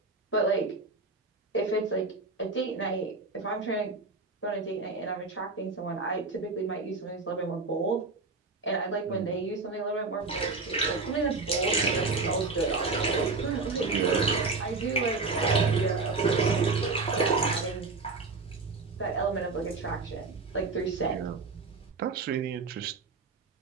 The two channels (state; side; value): quieter; left; 3.8 dB